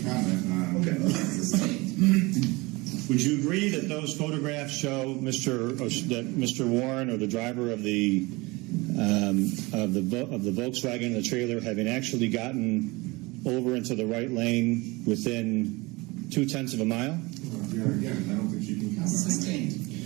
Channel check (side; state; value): left; quieter; 23.8 dB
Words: comment. Okay. Would you agree that those photographs show that Mr. Warren, or the driver of the Volkswagen and the trailer, having actually gotten over into the right lane within 0.2 of a mile? Your Honor, again, I don't think she can comment. Sustained.